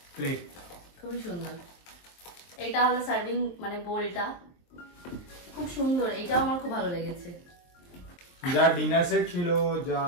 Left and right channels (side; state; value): right; late; 23 ms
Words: প্লেট, খুবই সুন্দর। এটা হলো সার্ভিং মানে বোলটা, খুব সুন্দর। এটাও আমার খুব ভালো লেগেছে। যা ডিনার সেট ছিল, যা